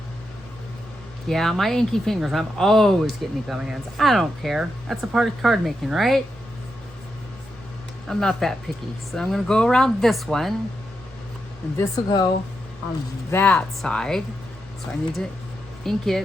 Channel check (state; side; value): normal; both; correlation 0.85